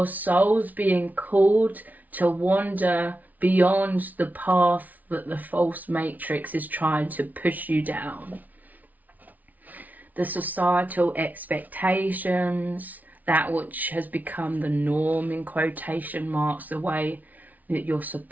souls being called to wander beyond the path that the false matrix is trying to push you down. The societal expectations, that which has become the norm in quotation marks, the way that you're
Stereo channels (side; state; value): left; late; 0.076 ms